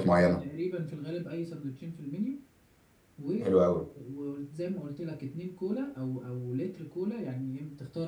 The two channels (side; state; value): both; identical; correlation 1.00